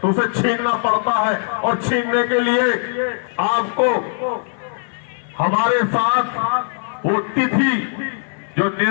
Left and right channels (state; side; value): silent; right; 59 dB below the other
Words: उसे छीनना पड़ता है, और छीनने के लिए आपको हमारे साथ वो तिथि जो